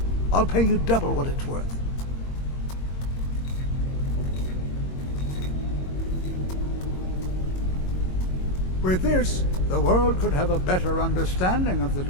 I'll pay you double what it's worth. With this, the world could have a better understanding of the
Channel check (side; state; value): right; late; 22 ms